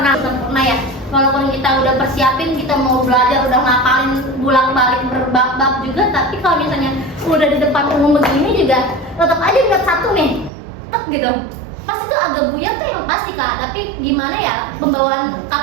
sempurna ya. Walaupun kita udah persiapin, kita mau belajar, udah ngapalin bolak-balik berbab-bab juga, tapi kalau misalnya udah di depan umum begini juga, tetap aja berat satu nih, tek gitu. Pas itu agak buyar tuh yang pasti Kak, tapi gimana ya pembawaan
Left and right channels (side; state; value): left; drops out; at 10.5 s